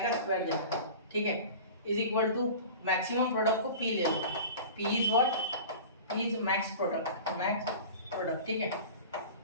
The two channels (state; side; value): inverted; both; correlation -0.37